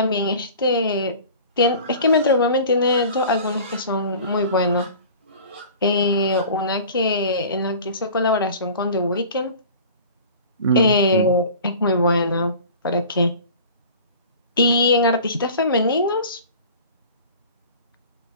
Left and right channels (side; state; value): both; inverted; correlation -0.42